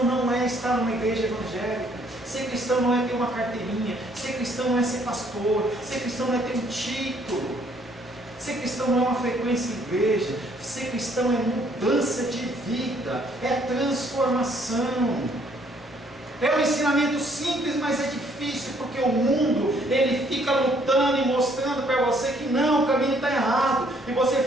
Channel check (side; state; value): both; normal; correlation 0.65